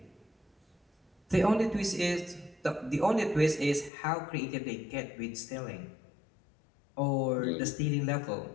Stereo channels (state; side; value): drops out; right; at 3.9 s